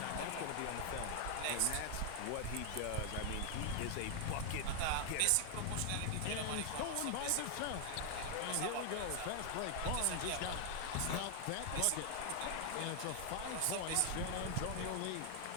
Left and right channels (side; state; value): both; different; correlation 0.00